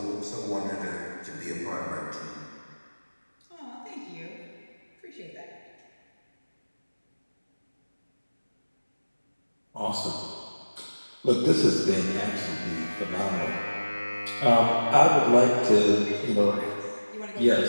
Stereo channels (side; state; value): both; inverted; correlation -1.00